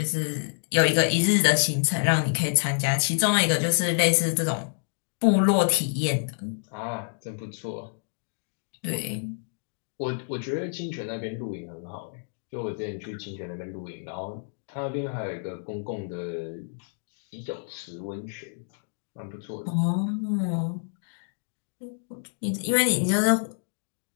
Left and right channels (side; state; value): right; silent; digital silence